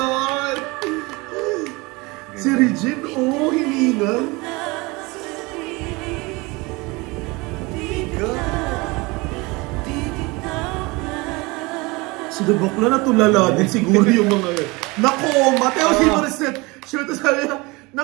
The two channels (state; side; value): quieter; left; 24.7 dB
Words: Si Regine, oh, hiningal. Si Bakla natulala din siguro yung mga yun. Nako, Mateo si Morissette. Shoot, sabi niya,